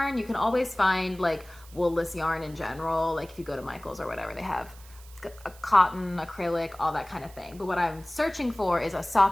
You can always find like woolless yarn in general, like if you go to Michael's or whatever, they have a cotton, acrylic, all that kind of thing. But what I'm searching for is a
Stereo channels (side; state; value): right; noise; hiss, 22 dB below the sound